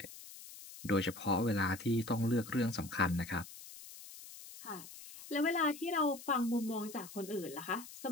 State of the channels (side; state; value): left; noise; hiss, 15 dB below the sound